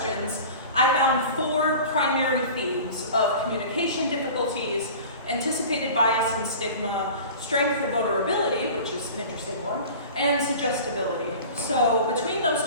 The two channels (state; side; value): inverted; both; correlation -0.39